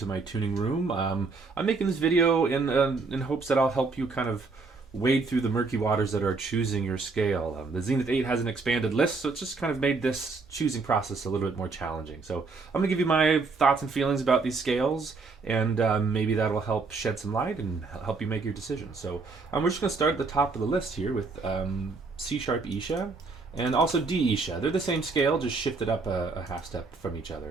my tuning room. I'm making this video in hopes that I'll help you kind of wade through the murky waters that are choosing your scale. The Xenith8 has an expanded list, so it's just kind of made this choosing process a little bit more challenging. So I'm going to give you my thoughts and feelings about these scales, and maybe that'll help shed some light and help you make your decision. So we're just going to start at the top of the list here with C sharp Isha and also D Isha. They're the same scale, just shifted up a half step from each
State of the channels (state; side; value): quieter; left; 4.1 dB